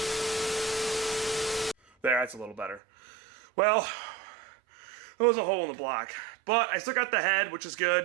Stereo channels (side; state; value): left; drops out; at 2.8 s